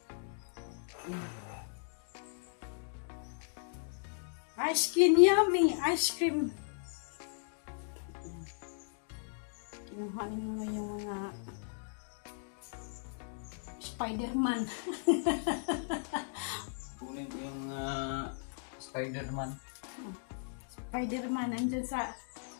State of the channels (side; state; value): right; silent; digital silence